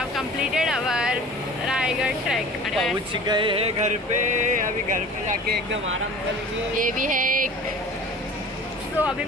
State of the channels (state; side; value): normal; both; correlation 0.42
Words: completed our Raigad trek. पहुंच गए हैं घर पे. अभी घर पे जाके एकदम आराम करेंगे. ये भी है एक. तो अभी